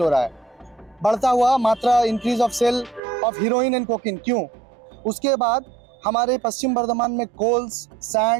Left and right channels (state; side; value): drops out; left; at 3.0 s